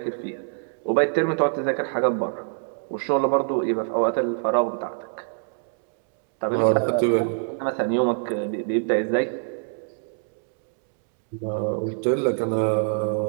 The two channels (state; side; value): silent; left; digital silence